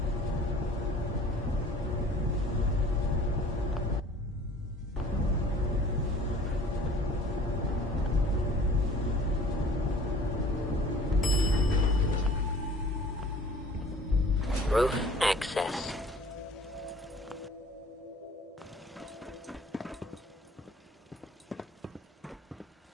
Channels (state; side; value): normal; both; correlation 0.49